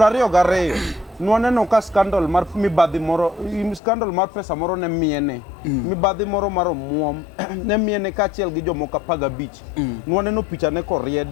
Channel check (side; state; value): right; drops out; at 3.8 s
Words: nwaneno ka scandal mar mibadhi moro scandal mar pesa moro ne miene mibadhi moro mar omuom ne miene kachiel gi jomoko 15 nwaneno picha ne